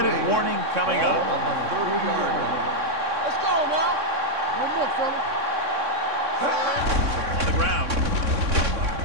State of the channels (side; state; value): left; late; 3.6 ms